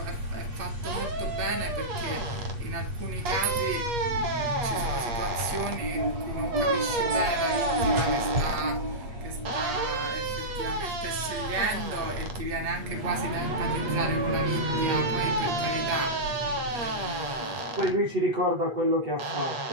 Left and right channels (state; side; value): late; left; 8.7 ms